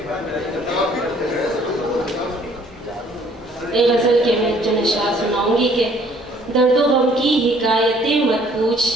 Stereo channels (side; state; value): both; normal; correlation 0.59